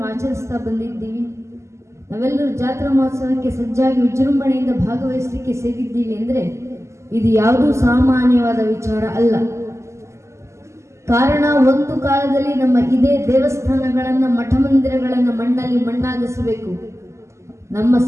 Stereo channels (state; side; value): late; left; 0.13 ms